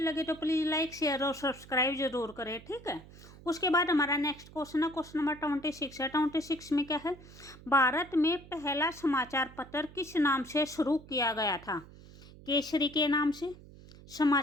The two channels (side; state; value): right; noise; hum, 19 dB below the sound